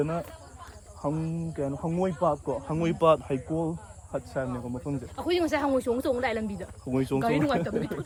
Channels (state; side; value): identical; both; correlation 1.00